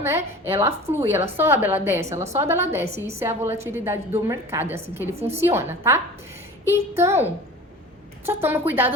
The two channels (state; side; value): normal; both; correlation 0.38